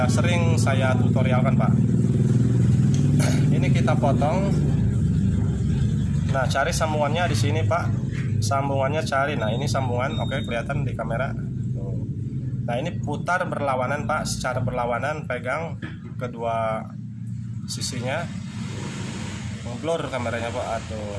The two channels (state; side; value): identical; both; correlation 1.00